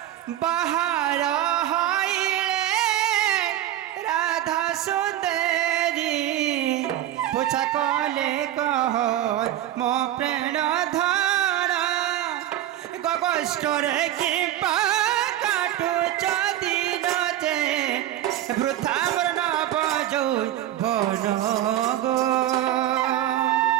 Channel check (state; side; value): quieter; left; 12.8 dB